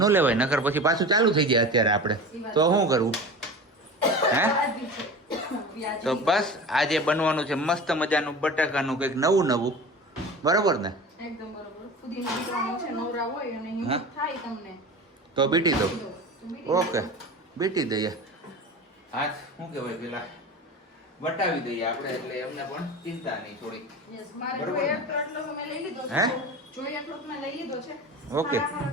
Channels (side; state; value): both; normal; correlation 0.33